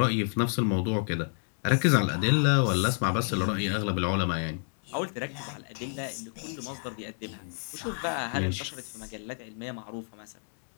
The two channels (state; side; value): silent; right; 58 dB below the other